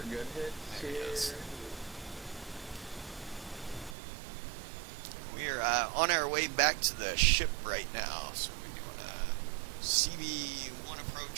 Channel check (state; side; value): drops out; left; at 4.0 s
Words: good hits. There he is. Here. We are on our way back to the ship right now, so we're doing a CB-1